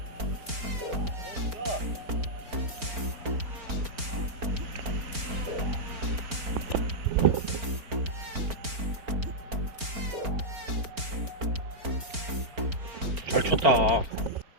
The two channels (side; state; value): left; late; 4.4 ms